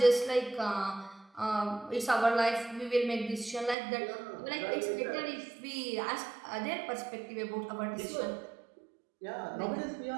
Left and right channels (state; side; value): drops out; left; at 3.8 s